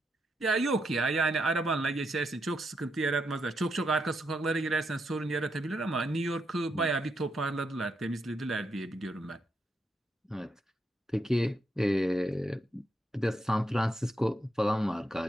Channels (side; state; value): both; normal; correlation 0.81